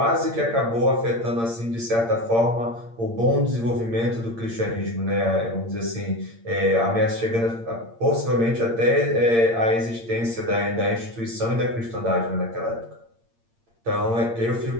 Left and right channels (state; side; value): late; left; 8.7 ms